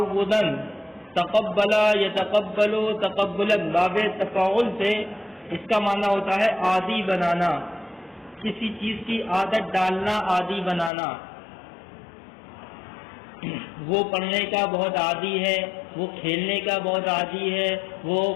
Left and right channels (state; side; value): drops out; right; at 10.9 s